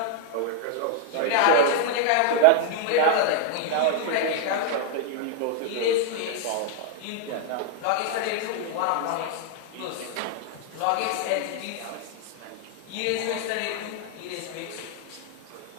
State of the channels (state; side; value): different; both; correlation 0.00